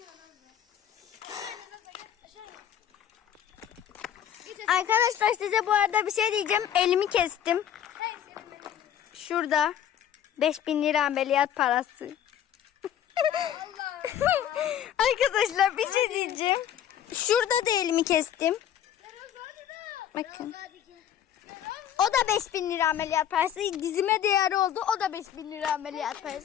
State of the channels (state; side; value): quieter; right; 10.0 dB